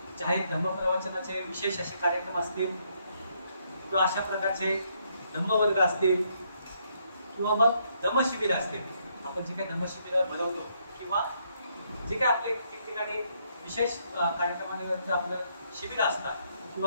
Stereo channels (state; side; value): inverted; both; correlation -0.73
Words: जाहीर धम्मप्रवचनाचे विशेष असे कार्यक्रम असतील किंवा अशा प्रकारचे धम्मवर्ग असतील किंवा मग धम्मशिबिर असतील. आपण जे काही धम्मशिबिर भरवतो किंवा जे काही आपले ठिकठिकाणी विशेष कार्यक्रमांवरती आपलं शिबिर असतात